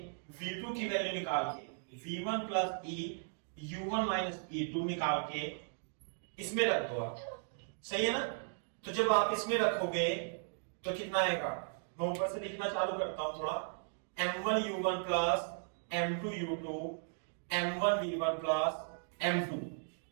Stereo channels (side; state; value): left; silent; digital silence